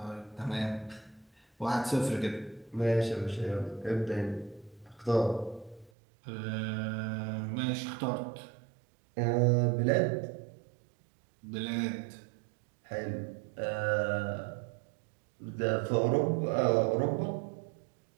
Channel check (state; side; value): drops out; left; at 5.9 s